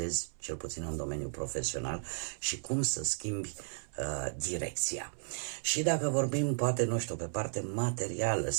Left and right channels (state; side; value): silent; left; 55 dB below the other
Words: cel puțin în domeniul profesional, și cum să schimbi direcția. Și dacă vorbim, poate, nu știu, pe parte materială,